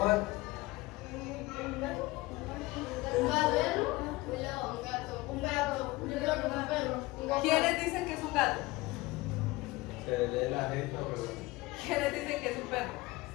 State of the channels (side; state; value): right; quieter; 21.0 dB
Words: Un perro, un león, un gato, un gato, yo creo que un perro, un gato. ¿Quiénes dicen que es un gato? Se lee la gente, pero... ¿Quiénes dicen que es un perro?